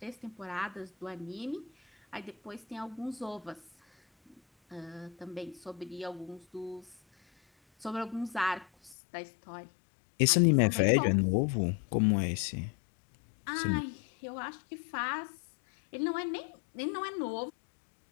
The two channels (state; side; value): drops out; right; at 9.0 s